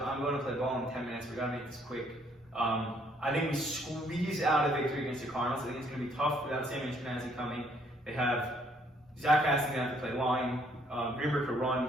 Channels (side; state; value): both; normal; correlation 0.66